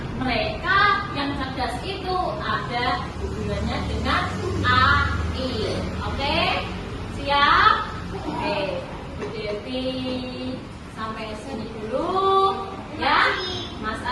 mereka yang cerdas itu ada hubungannya dengan AI. Oke? Siap? Oke. Bu Devi sampai sini dulu ya. Mas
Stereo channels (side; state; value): both; identical; correlation 1.00